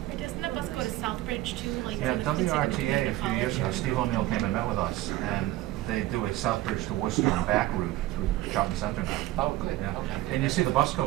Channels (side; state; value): left; quieter; 16.2 dB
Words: Or doesn't the bus go to Southbridge too? Like Yeah, it's in the WRTA a community few years ago, college? Steve O'Neill came and met with us, and they do a Southbridge to Worcester and back route through shopping center now. Oh, good, Yeah. okay. And you see the bus